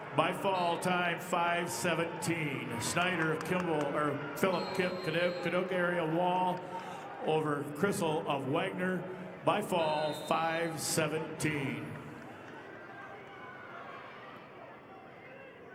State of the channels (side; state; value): both; identical; correlation 1.00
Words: By fall time 5:17. Snyder of Kimball or Philip Kadoka area Wall over Crissel of Wagner. By fall 5:17.